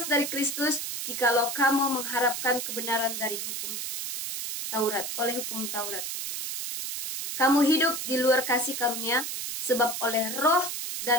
dari Kristus jikalau kamu mengharapkan kebenaran dari hukum Taurat, oleh hukum Taurat. Kamu hidup di luar kasih karunia, sebab oleh roh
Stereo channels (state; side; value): noise; right; hiss, 4 dB below the sound